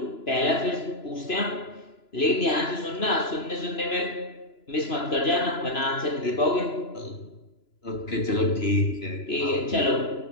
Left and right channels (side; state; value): right; late; 2.9 ms